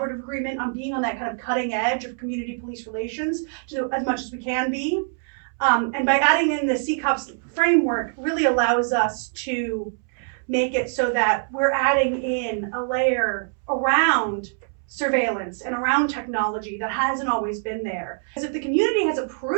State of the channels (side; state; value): left; silent; 63 dB below the other